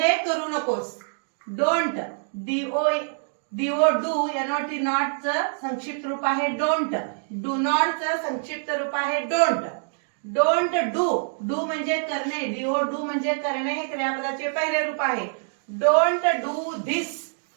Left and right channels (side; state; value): left; silent; digital silence